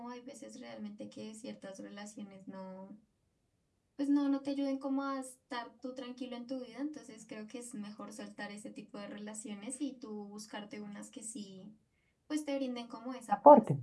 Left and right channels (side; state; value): both; identical; correlation 1.00